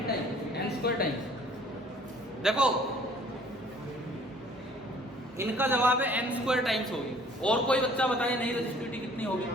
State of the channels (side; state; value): both; normal; correlation 0.55